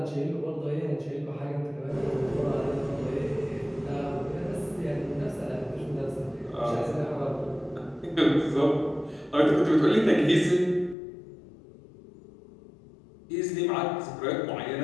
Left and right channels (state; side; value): drops out; right; at 11.0 s